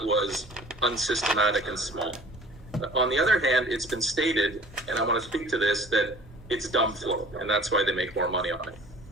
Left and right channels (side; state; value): both; normal; correlation 0.48